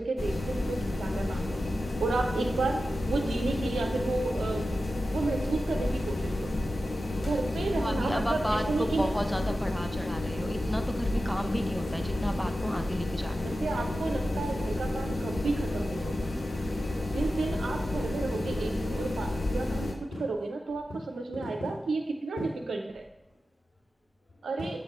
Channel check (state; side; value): normal; both; correlation 0.93